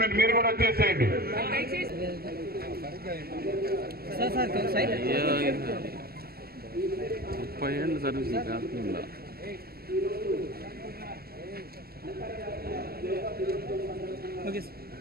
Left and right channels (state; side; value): late; left; 0.45 ms